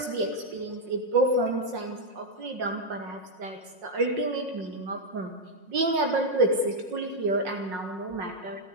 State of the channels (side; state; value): left; late; 5.5 ms